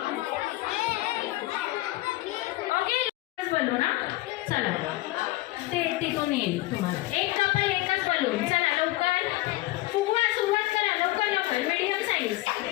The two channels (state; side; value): quieter; right; 18.6 dB